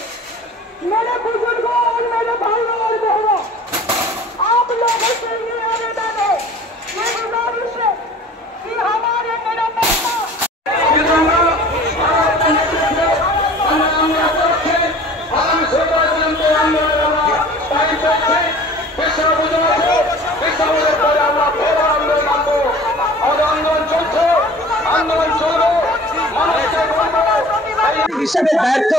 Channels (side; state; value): both; normal; correlation 0.45